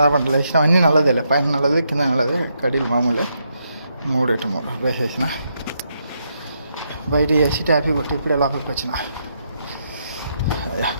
లేచిన అన్నీ నల్లదేలే, పైన నల్లది కింద నల్లది, కడీలు మామూలే. 3 వేసేసిన, బయట వేసి ట్యాపీ కొట్టి ఇప్పుడే లోపలికి వచ్చిన.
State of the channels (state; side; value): inverted; both; correlation -0.79